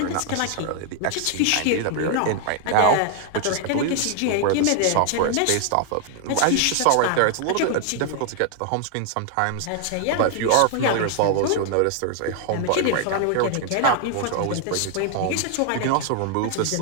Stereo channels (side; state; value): both; different; correlation 0.00